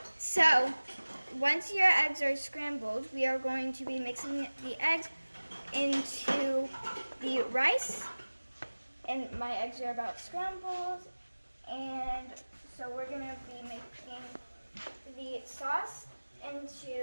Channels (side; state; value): both; inverted; correlation -1.00